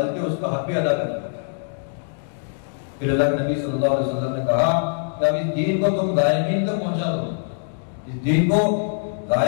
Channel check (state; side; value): silent; right; digital silence